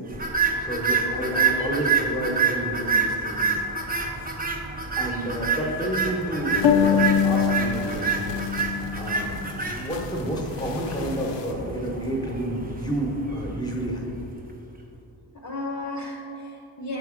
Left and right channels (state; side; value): normal; both; correlation 0.04